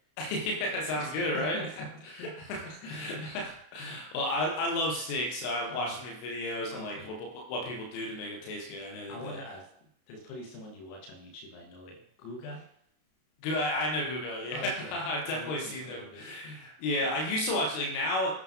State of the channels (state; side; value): late; right; 32 ms